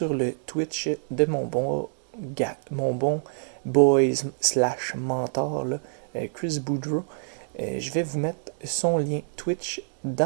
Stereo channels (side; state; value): left; silent; 61 dB below the other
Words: le Twitch de mon bon boys slash mentor, là, Chris Boudreau, je vais vous mettre son lien Twitch